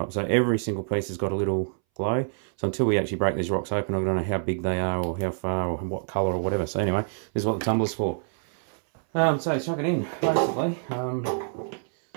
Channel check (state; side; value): silent; left; 60 dB below the other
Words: So every single piece has got a little glow. So until we actually break these rocks open, I don't know how big they are, or how far, or what colour, or whatever. So anyway, this is what the tumbler's for. So chuck it in, basically. So